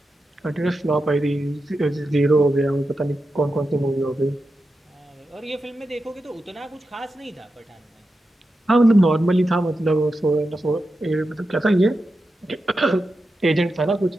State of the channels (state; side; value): normal; both; correlation 0.90